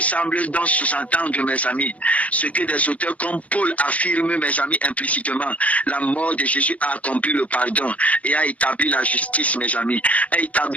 donc sous-entendre, mes amis, ce que des auteurs comme Paul affirment, mes amis, implicitement. La mort de Jésus a accompli le pardon et a établi la justice, mes amis. A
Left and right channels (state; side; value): late; right; 0.071 ms